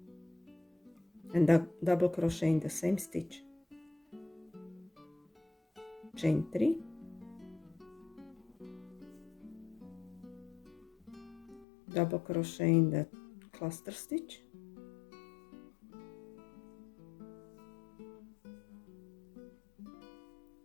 and double crochet in the same stitch, chain 3, double crochet in the cluster stitch,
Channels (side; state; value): right; drops out; at 11.7 s